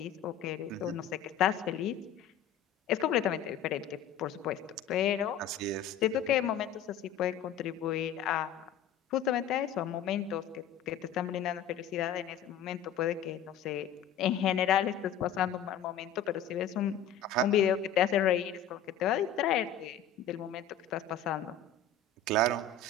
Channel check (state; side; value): quieter; right; 7.0 dB